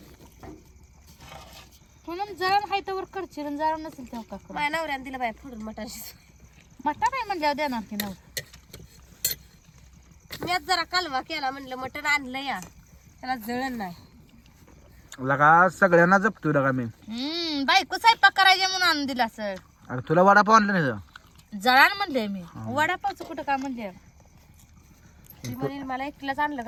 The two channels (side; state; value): both; identical; correlation 1.00